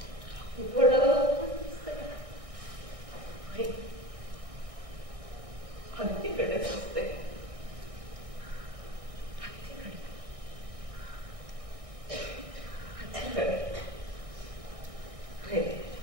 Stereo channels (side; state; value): left; late; 1.6 ms